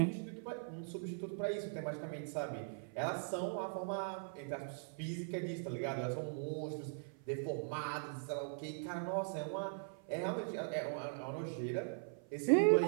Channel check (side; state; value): left; silent; 51 dB below the other